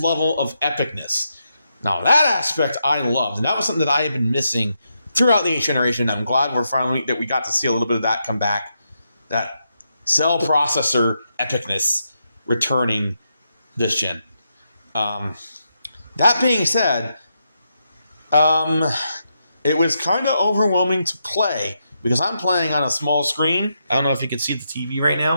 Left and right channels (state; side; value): inverted; both; correlation -0.83